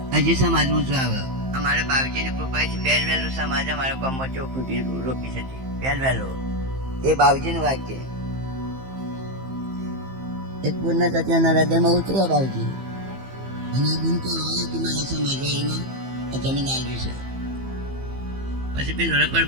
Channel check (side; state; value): left; late; 15 ms